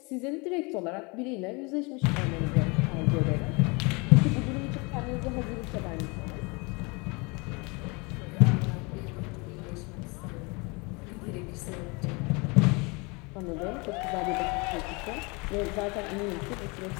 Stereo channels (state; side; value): quieter; right; 28.7 dB